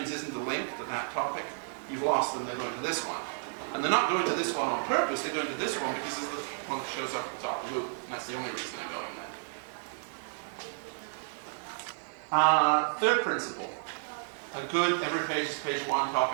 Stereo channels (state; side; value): silent; left; digital silence